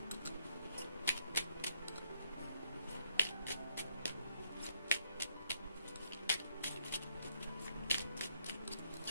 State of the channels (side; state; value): both; inverted; correlation -0.71